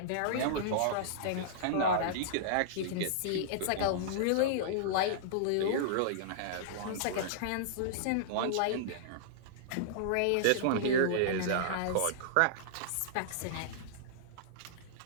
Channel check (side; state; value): both; different; correlation -0.02